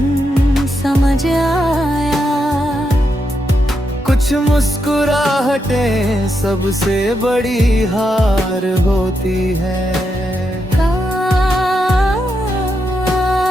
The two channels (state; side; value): normal; both; correlation 0.83